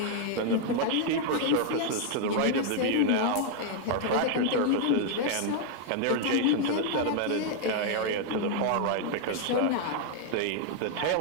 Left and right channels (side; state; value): both; different; correlation 0.00